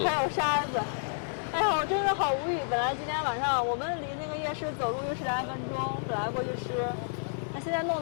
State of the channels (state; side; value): silent; right; 58 dB below the other